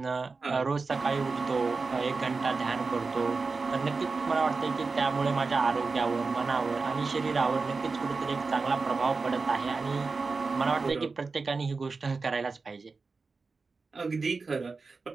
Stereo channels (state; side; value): quieter; left; 4.2 dB